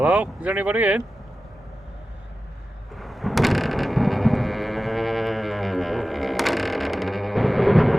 Hello? Is anybody in?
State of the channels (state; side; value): normal; both; correlation 0.94